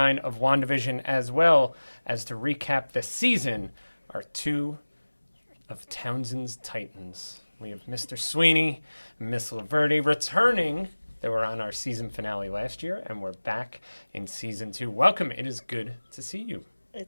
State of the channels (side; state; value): both; inverted; correlation -1.00